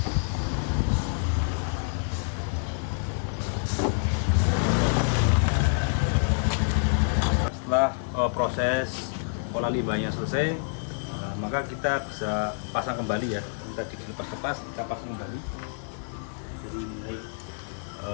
Setelah proses olah limbahnya selesai, maka kita bisa pasang kembali ya. Yang tadi dilepas-lepas kita pasang kembali. Jadi mulai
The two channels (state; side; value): silent; right; 60 dB below the other